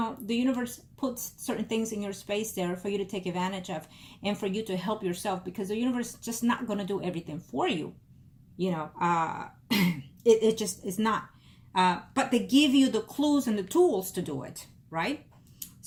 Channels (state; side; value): identical; both; correlation 1.00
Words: the universe puts certain things in your space there for you to take advantage of and for you to help yourself, because the universe is just not going to do everything for you. You know, it just is not. But they give you the clues and the tools to do it, right?